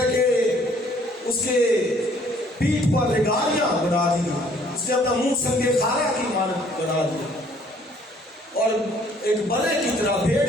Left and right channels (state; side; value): normal; both; correlation 0.60